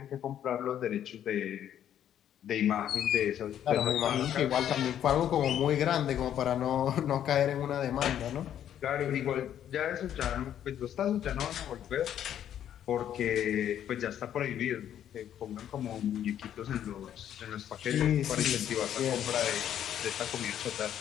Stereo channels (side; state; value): right; quieter; 10.3 dB